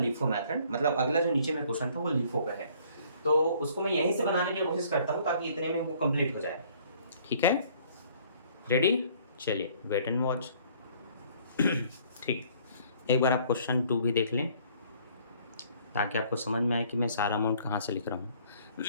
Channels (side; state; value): both; inverted; correlation -0.58